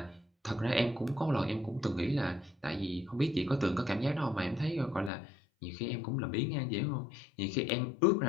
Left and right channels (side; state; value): right; drops out; at 5.1 s